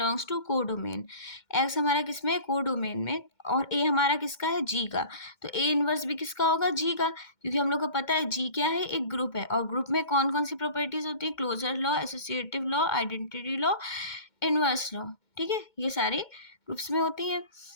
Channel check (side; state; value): right; late; 2.2 ms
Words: टू को डोमेन। एक्स हमारा किस में, को डोमेन में, और ए हमारा किसका है, जी का। तो ए इनवर्स भी किसका होगा, जी का, क्योंकि हम लोग को पता है जी क्या है, एक ग्रुप है, और ग्रुप में कौन कौन सी प्रॉपर्टीज होती है, closure law, associative law, identity law, inverse law. ठीक है, ये सारे ग्रुप्स में होती हैं।